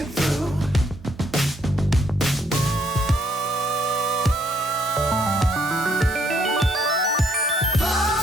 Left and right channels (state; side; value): normal; both; correlation 0.69